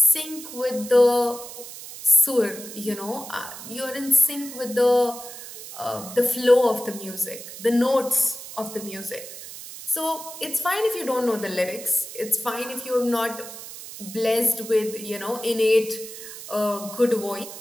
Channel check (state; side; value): noise; right; hiss, 12 dB below the sound